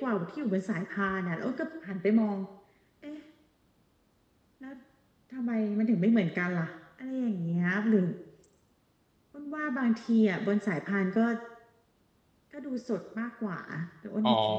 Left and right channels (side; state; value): both; identical; correlation 1.00